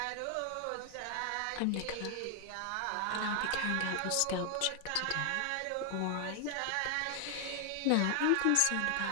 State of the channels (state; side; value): different; both; correlation 0.00